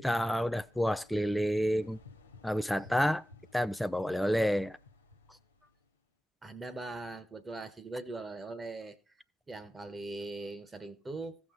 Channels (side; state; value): both; normal; correlation 0.95